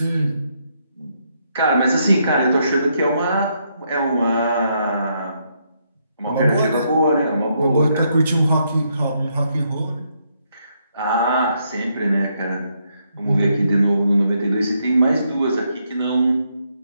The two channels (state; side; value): inverted; both; correlation -0.76